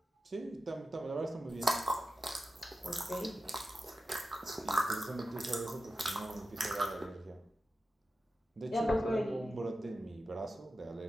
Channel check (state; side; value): normal; both; correlation 0.92